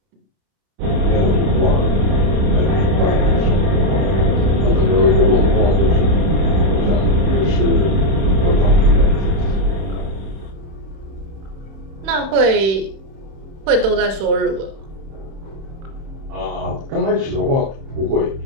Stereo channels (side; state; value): left; late; 31 ms